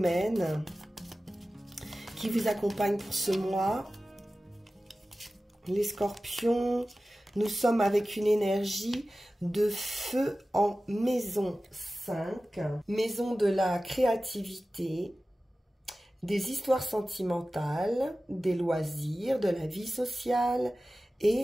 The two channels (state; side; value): normal; both; correlation 0.96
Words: qui vous accompagne pour ce mois? Les scorpions, nous sommes avec une énergie de feu en maison 5, maison de la créativité, des histoires sentimentales, des loisirs, de la vie sociale